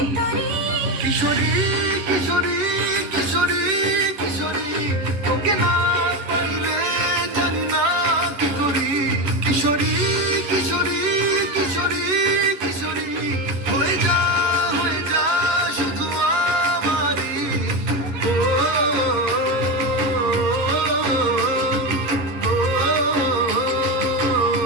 তরি কিশোরী কিশোরী কিশোরী কিশোরী তোকে না পাইলে জানি না কি করি কিশোরী কিশোরী কিশোরী কিশোরী হয়ে যা শুধু আমারই ও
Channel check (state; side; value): late; left; 11 ms